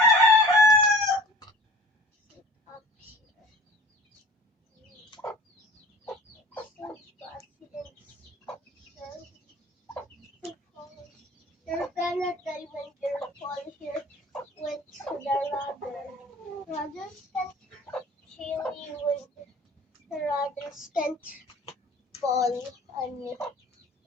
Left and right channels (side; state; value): both; normal; correlation 0.44